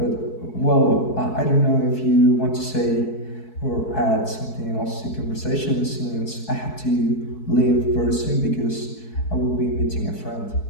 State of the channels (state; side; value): late; right; 4.6 ms